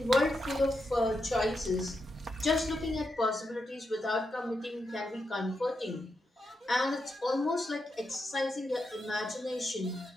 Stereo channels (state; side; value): normal; both; correlation 0.85